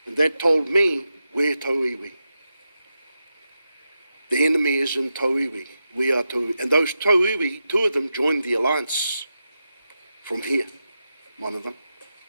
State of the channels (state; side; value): inverted; both; correlation -0.89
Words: And that told me, we're tauiwi. The enemy is in tauiwi. We are tauiwi. And those tauiwi, two of them joined the alliance from here, one of them.